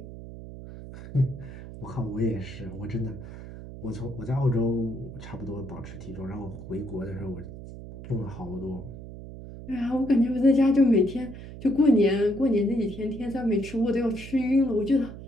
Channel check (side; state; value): right; noise; hum, 13 dB below the sound